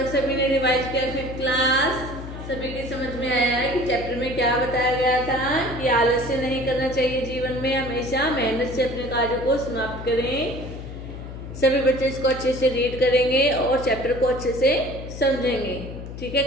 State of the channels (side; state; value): left; noise; hum, 10 dB below the sound